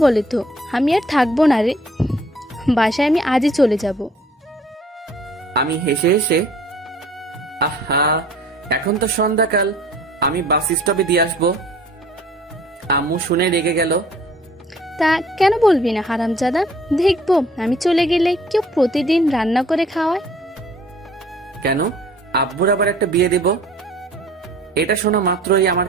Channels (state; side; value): normal; both; correlation 0.54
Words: বলে তো। আমি আর থাকবো না রে, বাসায় আমি আজই চলে যাব। আমি হেসে হেসে, আহা এখন তো সন্ধ্যাকাল, আমি বাস স্টপে দিয়ে আসবো। আম্মু শুনে রেগে গেল। তা কেন বলবি না হারামজাদা? দেখবো আমি চলে গেলে কেউ প্রতিদিন রান্না করে খাওয়ায়। কেন? আব্বুর আবার একটা বিয়ে দেব? এটা শোনা মাত্রই আমার